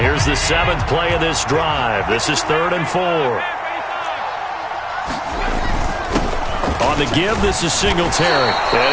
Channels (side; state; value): both; identical; correlation 1.00